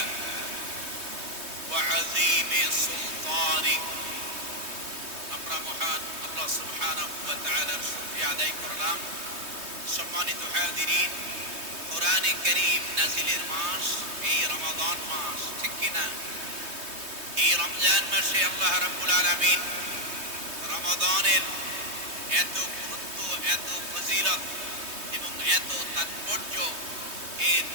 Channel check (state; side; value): late; left; 3.2 ms